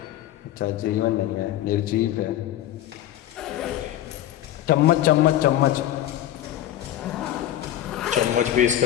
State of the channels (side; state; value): right; quieter; 12.7 dB